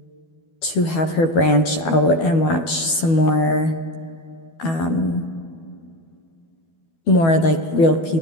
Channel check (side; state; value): right; late; 12 ms